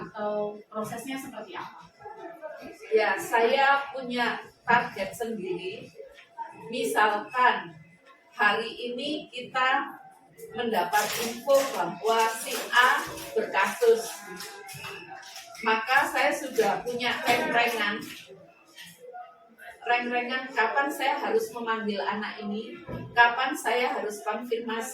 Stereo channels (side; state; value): both; identical; correlation 1.00